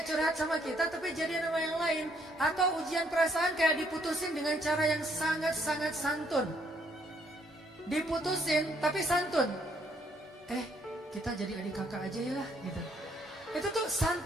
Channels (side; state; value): both; normal; correlation 0.69